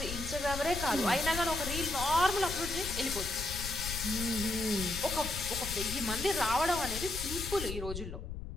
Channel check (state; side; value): noise; left; rumble, 7 dB below the sound